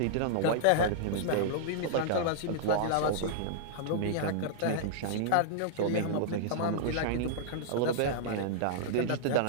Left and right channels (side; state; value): both; different; correlation -0.01